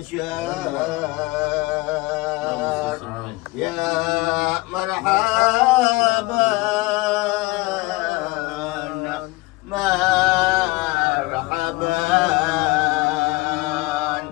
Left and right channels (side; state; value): right; quieter; 22.2 dB